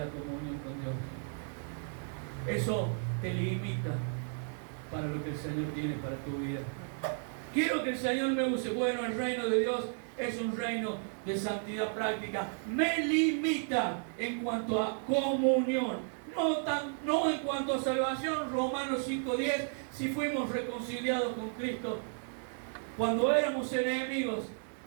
comunión con Dios. Eso te limita para lo que el Señor tiene para tu vida. Quiero que el Señor me use. Bueno, el reino de Dios es un reino de santidad práctica. Me limita en cuanto a comunión. No en cuanto a salvación. Romanos 5:10. Si fuimos reconciliados con Cristo cuando éramos enemigos,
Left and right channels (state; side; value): silent; left; 55 dB below the other